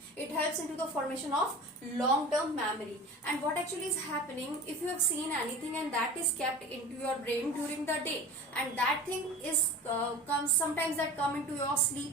It helps into the formation of long term memory. And what actually is happening, if you have seen anything and that is kept into your brain during the day, and that thing is comes sometimes that come into your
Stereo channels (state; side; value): normal; both; correlation 0.36